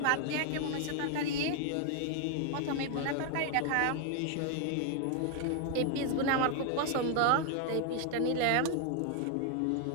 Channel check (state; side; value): different; both; correlation 0.00